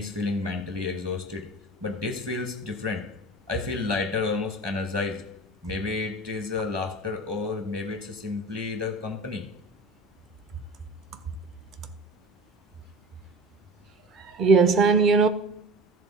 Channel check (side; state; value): both; normal; correlation 0.36